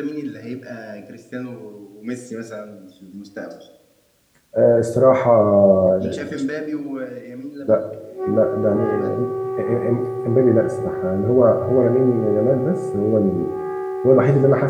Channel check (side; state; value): both; identical; correlation 1.00